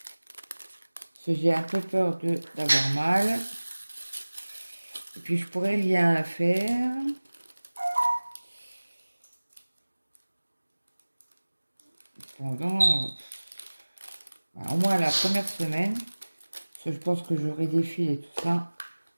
parce que j'ai un peu peur d'avoir mal et puis je pourrais rien faire. Pendant au moins la première semaine, parce que je pense que j'aurai des fils et tout ça,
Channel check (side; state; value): both; inverted; correlation -1.00